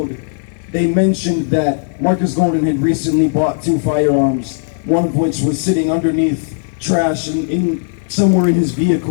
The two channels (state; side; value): silent; right; digital silence